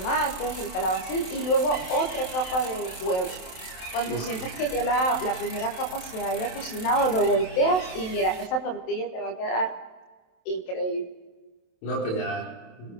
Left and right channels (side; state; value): right; late; 27 ms